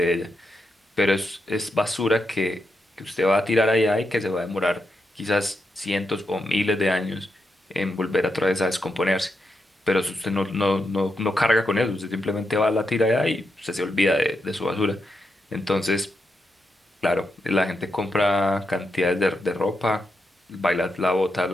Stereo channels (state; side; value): normal; both; correlation 0.84